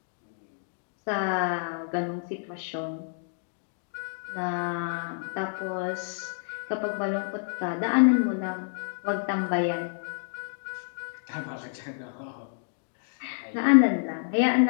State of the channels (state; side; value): silent; right; digital silence